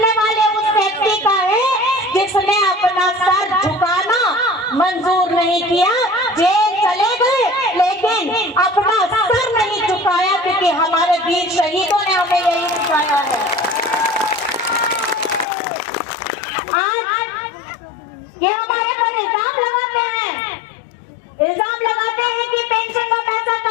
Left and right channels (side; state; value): right; drops out; at 15.5 s